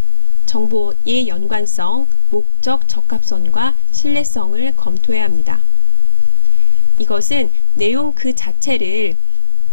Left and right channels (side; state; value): both; inverted; correlation -0.86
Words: 정보의 연관성, 목적, 적합성과 신뢰성을 검토해야 합니다. 이것은 내용 그 자체를